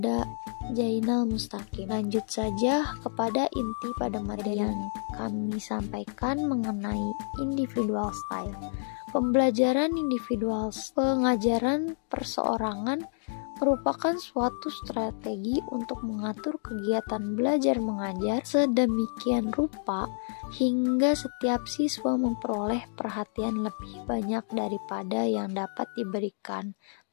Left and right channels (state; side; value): silent; right; digital silence